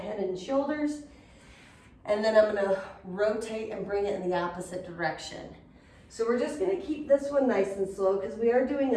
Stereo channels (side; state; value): both; identical; correlation 1.00